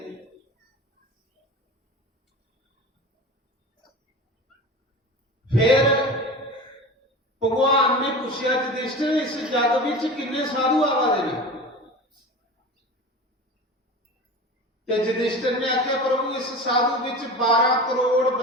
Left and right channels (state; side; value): normal; both; correlation 0.32